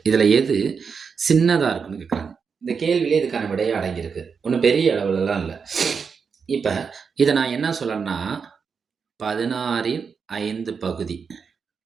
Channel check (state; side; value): quieter; left; 5.9 dB